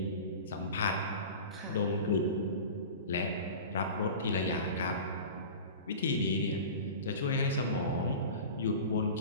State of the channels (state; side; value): inverted; both; correlation -0.34